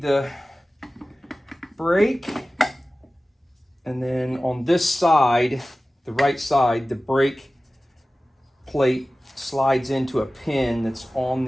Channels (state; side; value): normal; both; correlation 0.96